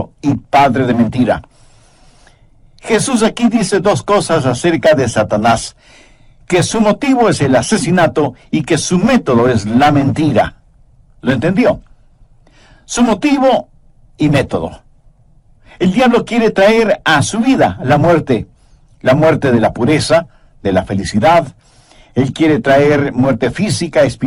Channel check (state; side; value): identical; both; correlation 1.00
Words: y padre de mentira. Jesús aquí dice dos cosas acerca de Satanás: que su motivo es el asesinato y que su método es la mentira. ¿Lo entendió? Su motivo y método. El diablo quiere traer a su vida la muerte de la pureza, de la felicidad. Él quiere traer muerte física,